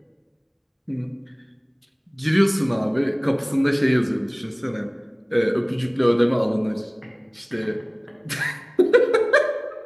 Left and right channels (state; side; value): identical; both; correlation 1.00